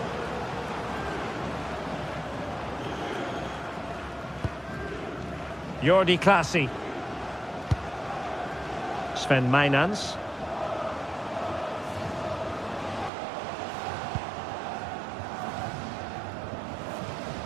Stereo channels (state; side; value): drops out; left; at 13.1 s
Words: Jordi Clasie. Sven Mainans.